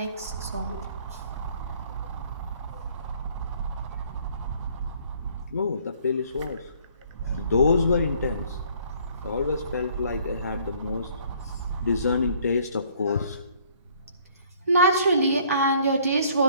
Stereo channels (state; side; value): inverted; both; correlation -0.59